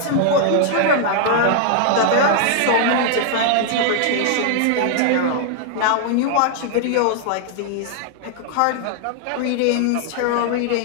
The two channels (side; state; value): both; different; correlation 0.00